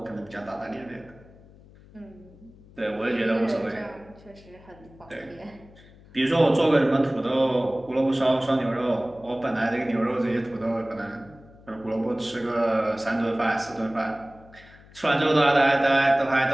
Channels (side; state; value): left; noise; hum, 23 dB below the sound